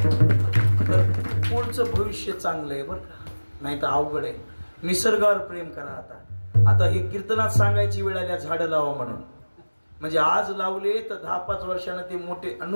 तर पुढचं भविष्य चांगलं आहे बरं का. नाही तर अवघड आहे. निसर्गावर प्रेम करा. आता हे कीर्तनात सांगायची वेळ आल्या झाडं लावा म्हणून. म्हणजे आज लावले तर 10-5 वर्षानं ते मोठे.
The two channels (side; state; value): both; inverted; correlation -1.00